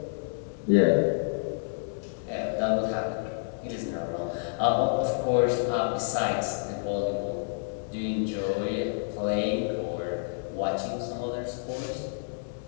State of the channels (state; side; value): silent; right; digital silence